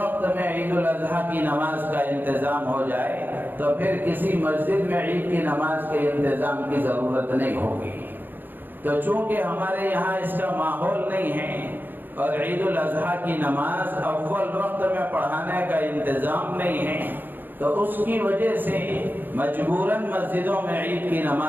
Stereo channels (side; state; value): left; late; 0.091 ms